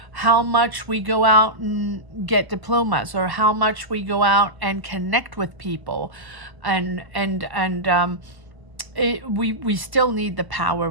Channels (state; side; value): late; left; 1.0 ms